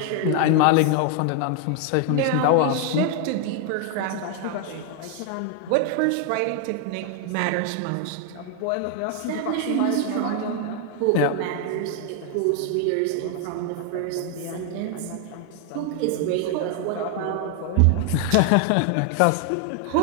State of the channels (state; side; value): different; both; correlation 0.00